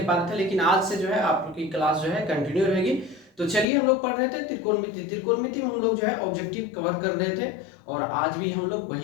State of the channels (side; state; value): right; drops out; at 3.7 s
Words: रहे थे। लेकिन आज से जो है आपकी क्लास जो है कंटिन्यू रहेगी। तो चलिए, हम लोग पढ़ रहे थे त्रिकोणमिति में हम लोग जो है ऑब्जेक्टिव कवर कर रहे थे और आज भी हम लोग